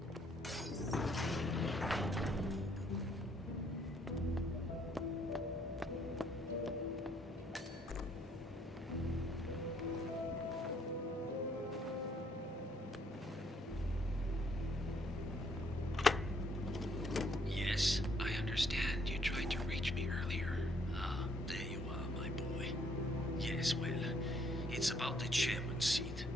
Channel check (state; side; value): normal; both; correlation 0.67